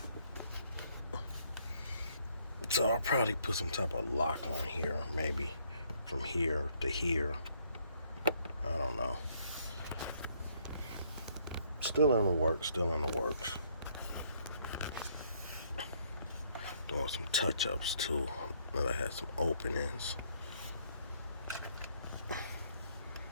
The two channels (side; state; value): both; inverted; correlation -0.67